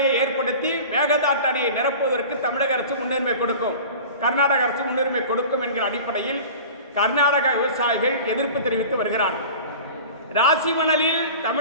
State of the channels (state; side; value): inverted; both; correlation -0.38